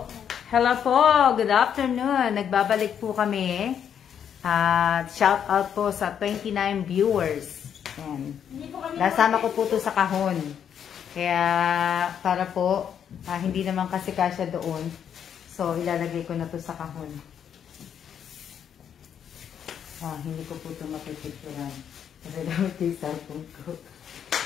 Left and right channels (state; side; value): quieter; right; 8.5 dB